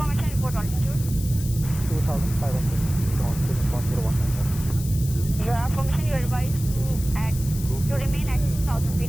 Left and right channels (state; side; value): noise; left; hiss, 13 dB below the sound